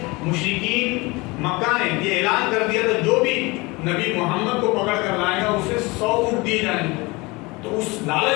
مشرکین مکہ نے یہ اعلان کر دیا تھا جو بھی نبی محمد کو پکڑ کر لائے گا اسے 100 اونٹ دیے جائیں گے. تو اس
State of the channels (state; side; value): quieter; right; 24.4 dB